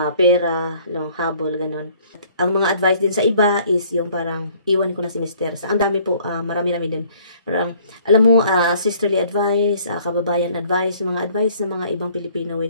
pera, no, habol, ganun. Ang mga advice din sa iba is yung parang iwan ko na si Mister. Sa ang dami po, marami-rami din. Parang, alam mo, sisterly advice, kababayan advice, mga advice ng mga ibang Pilipino,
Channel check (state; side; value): inverted; both; correlation -0.58